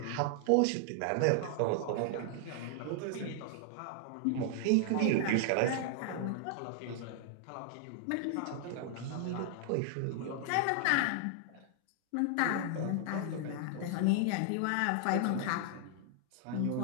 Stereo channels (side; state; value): both; different; correlation 0.00